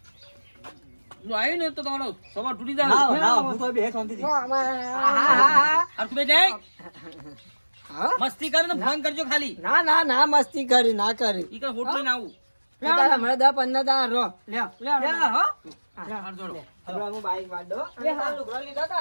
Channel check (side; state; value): both; inverted; correlation -1.00